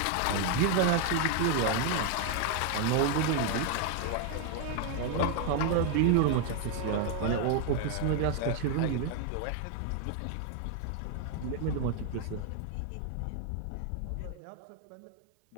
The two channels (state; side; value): different; both; correlation 0.01